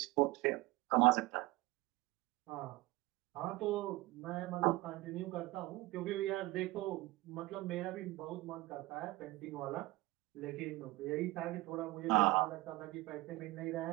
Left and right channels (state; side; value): quieter; left; 20.1 dB